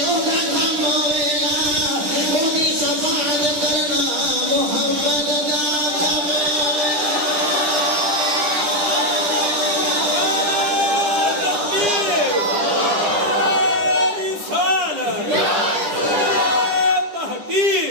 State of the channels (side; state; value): left; late; 10 ms